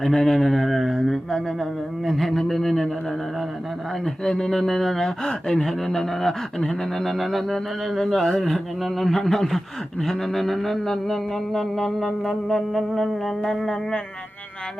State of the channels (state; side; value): normal; both; correlation 0.95